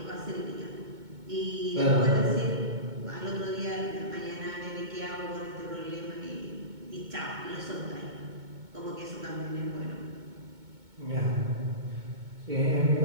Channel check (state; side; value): late; left; 2.2 ms